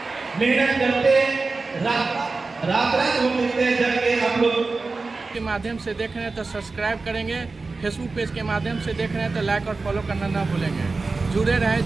मेहनत करते रात होते हैं जब के आप लोग के माध्यम से देख रहे हैं तो सब्सक्राइब करेंगे, फेसबुक पेज के माध्यम से देख रहे हैं तो लाइक और फॉलो करना ना भूलेंगे। जुड़े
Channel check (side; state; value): left; quieter; 3.8 dB